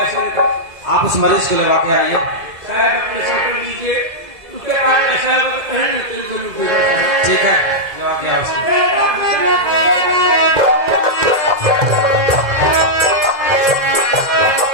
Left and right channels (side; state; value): left; late; 2.0 ms